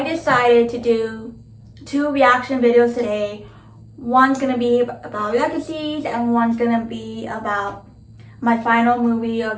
decided to do two reaction videos today. One's gonna be about Legacies and one's gonna be about my final movie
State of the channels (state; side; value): identical; both; correlation 1.00